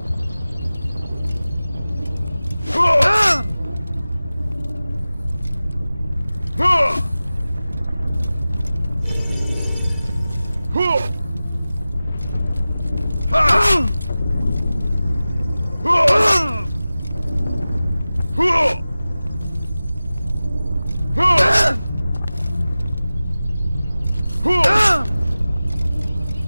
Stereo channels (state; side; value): inverted; both; correlation -0.96